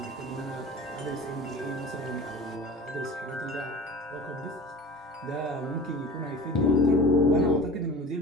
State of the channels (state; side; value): normal; both; correlation 0.38